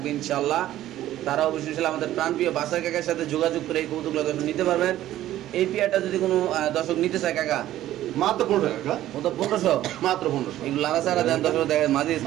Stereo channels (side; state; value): left; quieter; 13.6 dB